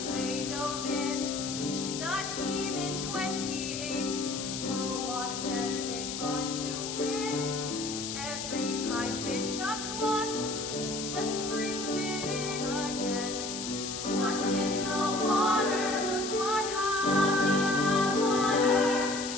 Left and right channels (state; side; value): noise; left; hiss, 6 dB below the sound